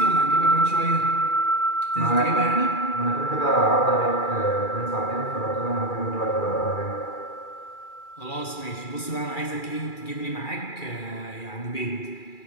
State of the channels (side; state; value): right; late; 2.3 ms